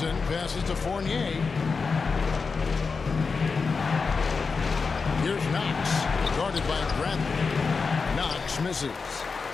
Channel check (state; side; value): quieter; right; 4.8 dB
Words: passes to Fournier. Here's Knox, guarded by Bradley. Knox misses.